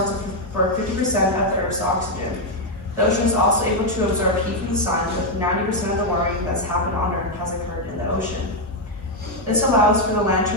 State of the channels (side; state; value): both; normal; correlation 0.02